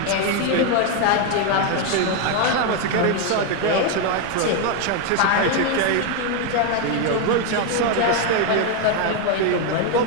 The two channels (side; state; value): both; different; correlation 0.02